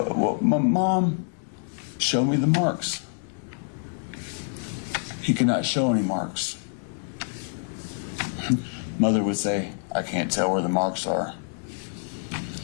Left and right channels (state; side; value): silent; right; digital silence